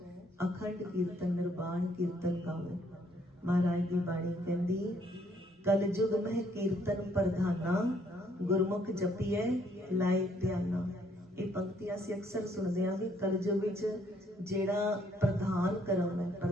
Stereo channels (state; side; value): normal; both; correlation 0.67